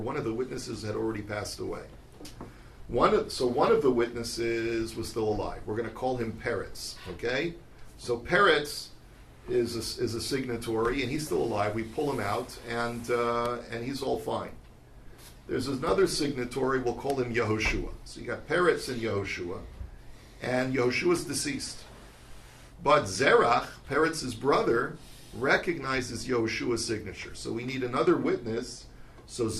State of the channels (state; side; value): identical; both; correlation 1.00